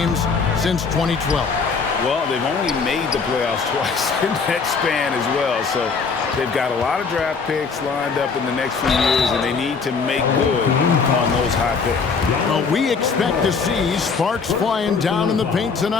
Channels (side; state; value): right; quieter; 5.1 dB